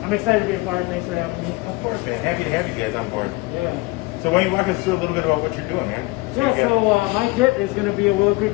I'm excited to be a part. Thanks for having me. Of course, man. Happy to have you guys on board. Yeah. So why don't you walk us through a little bit about what you're doing, man? Yeah, so my kit is going to be a Willow Creek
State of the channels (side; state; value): right; quieter; 23.4 dB